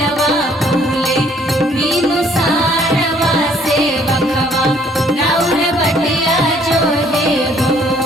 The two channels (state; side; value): normal; both; correlation 0.62